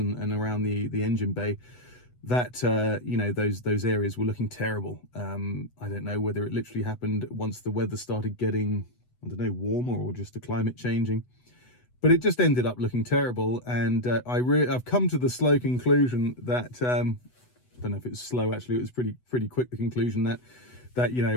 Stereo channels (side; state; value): right; late; 8.1 ms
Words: around the engine bay, that those areas were looking terrible. I don't know whether it literally happened once the weather started getting, I don't know, warmer, or just the climate changing, but it just ended up looking terrible. And I've come to the slow conclusion that I don't know if it was slow, actually it was pretty quick, the conclusion that